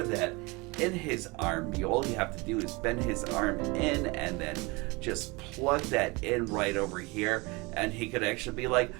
that in his arm. All you have to do is bend his arm in and then just plug that in right over here, and he could actually be like,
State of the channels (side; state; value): left; quieter; 25.8 dB